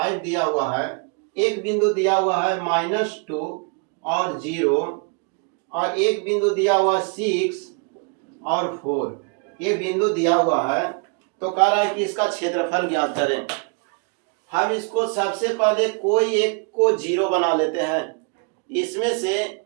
दिया हुआ है, एक बिंदु दिया हुआ है -2 और 0 और एक बिंदु दिया हुआ 6 और 4, ये बिंदु दिया हुआ है। तो कह रहा है कि इसका क्षेत्रफल ज्ञात करें। हम इसको सबसे पहले कोई एक को 0 बना लेते हैं, इसमें से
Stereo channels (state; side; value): quieter; left; 37.0 dB